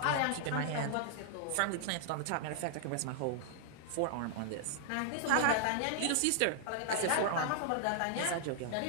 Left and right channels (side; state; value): both; different; correlation -0.01